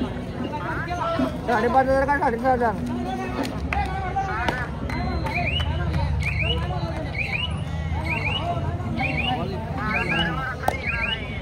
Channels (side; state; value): both; identical; correlation 1.00